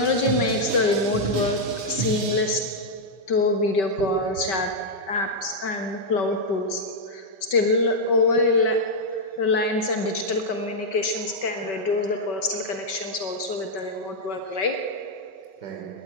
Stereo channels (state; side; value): late; right; 5.2 ms